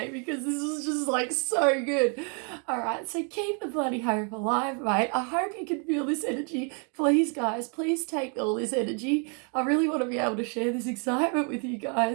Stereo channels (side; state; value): left; quieter; 38.5 dB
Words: because this was just like so good. All right, so keep the bloody hope alive, mate. I hope you can feel this energy. Please, guys, please take all this energy. I really want to be able to share this excitement with you